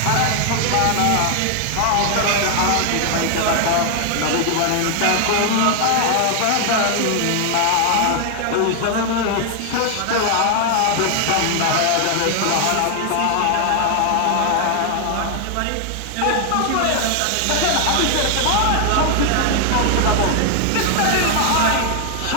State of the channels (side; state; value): both; different; correlation 0.00